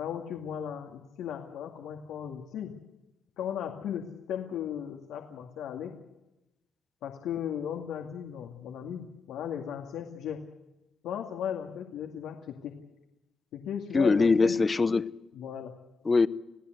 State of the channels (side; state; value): right; quieter; 4.7 dB